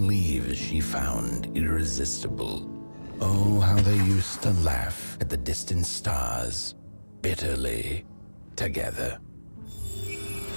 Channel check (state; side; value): inverted; both; correlation -1.00